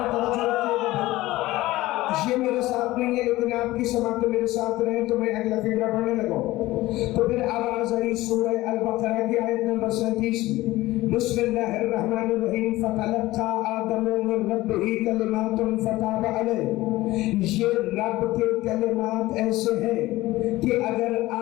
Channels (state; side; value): quieter; right; 17.7 dB